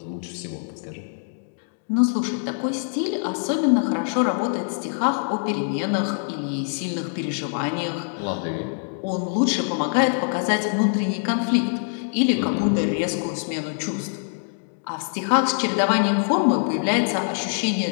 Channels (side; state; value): right; silent; digital silence